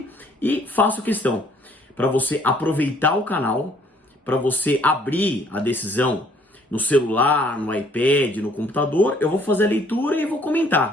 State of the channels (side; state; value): both; normal; correlation 0.62